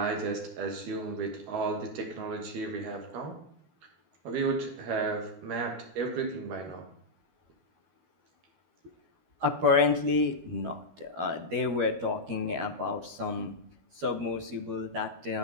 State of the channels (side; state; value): left; late; 12 ms